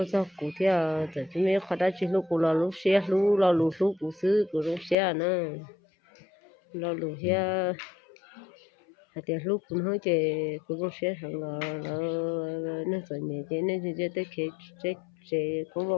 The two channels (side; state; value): right; drops out; at 5.0 s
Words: cho cụ thì tại vì mấy khó đã chỉ lúc cụ là lúc xe lúc là lúc cụ xứ cụ lúc xe nữa là lúc xe thì lúc cũng hơi chơi cũng sẽ hàng là nó rồi nhẹ chơi nên chơi tới khi chơi cũng vào